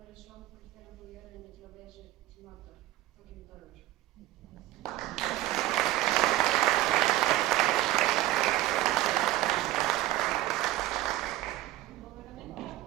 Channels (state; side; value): quieter; left; 15.6 dB